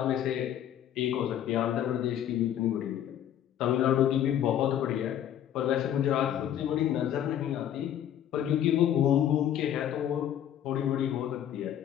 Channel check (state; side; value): quieter; right; 10.6 dB